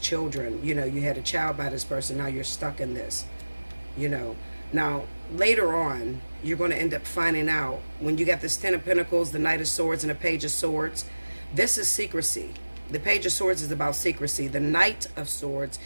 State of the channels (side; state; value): both; inverted; correlation -1.00